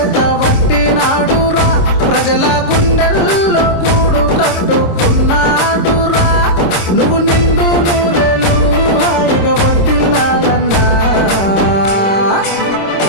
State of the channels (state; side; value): late; right; 26 ms